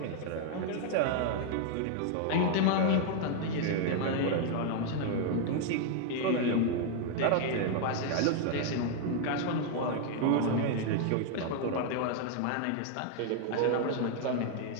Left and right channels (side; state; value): both; different; correlation 0.00